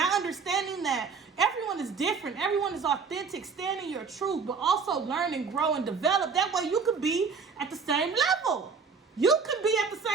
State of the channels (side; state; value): left; quieter; 5.2 dB